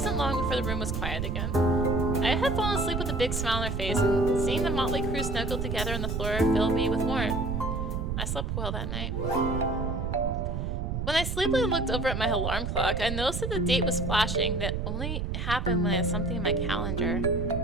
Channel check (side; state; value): right; noise; rumble, 2 dB below the sound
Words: long before the room was quiet again. I had fallen asleep with a big smile on her face, and seeing the motley crew snuggled together on the floor filled me with warmth. I slept well that night. When I sleepily looked over at my alarm clock, I noticed that the date was flashing. That only happened when I had something in my calendar.